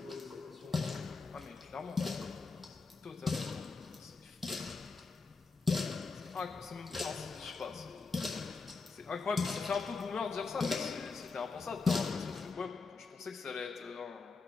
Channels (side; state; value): right; quieter; 4.4 dB